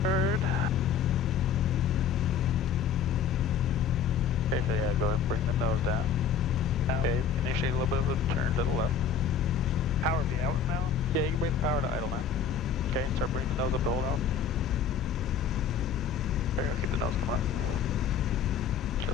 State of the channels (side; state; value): right; quieter; 6.8 dB